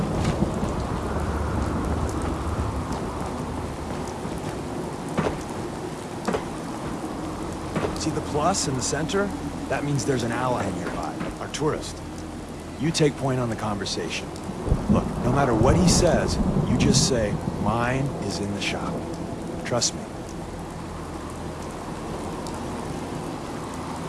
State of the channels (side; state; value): both; identical; correlation 1.00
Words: See the plus in the center? That means there's an ally nearby, our tourist. You take point on the conversation. Look, no matter what he says, you just say, mine is in the shop. Trust me.